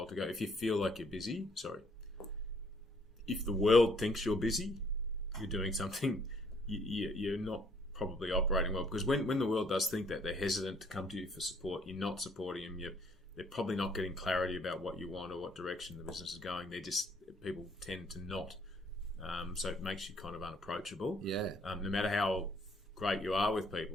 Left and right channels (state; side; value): normal; both; correlation 0.64